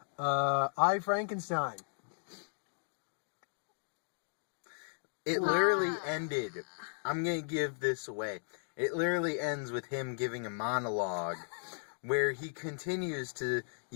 I Frankenstein. It literally ended. I'm going to give this away. It literally ends with him giving a monologue where he continues to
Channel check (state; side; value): silent; right; digital silence